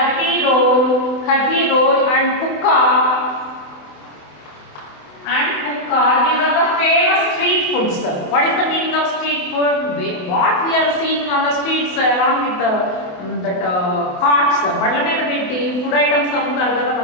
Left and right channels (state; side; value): late; right; 28 ms